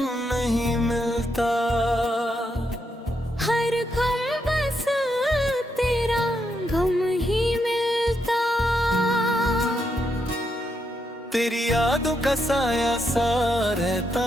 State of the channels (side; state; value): both; normal; correlation 0.81